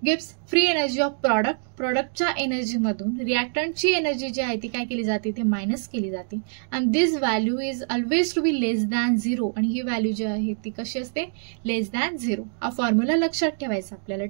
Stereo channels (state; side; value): silent; left; digital silence